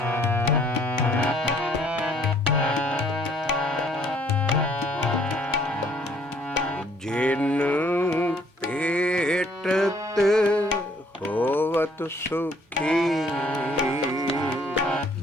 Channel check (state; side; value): normal; both; correlation 0.62